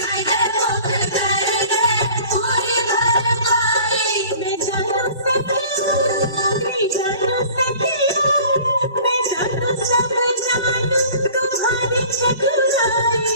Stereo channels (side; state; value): both; inverted; correlation -0.47